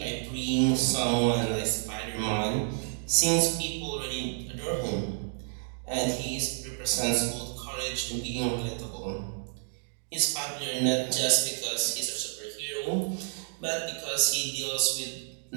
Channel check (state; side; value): silent; left; digital silence